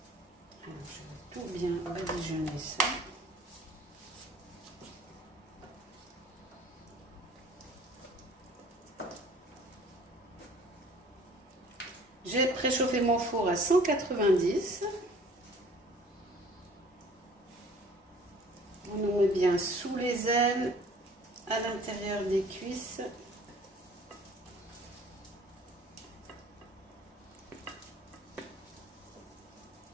je vais tout bien badigeonner ça. J'ai préchauffé mon four à 190. On le met bien sous les ailes, à l'intérieur des cuisses.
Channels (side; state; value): both; normal; correlation 0.52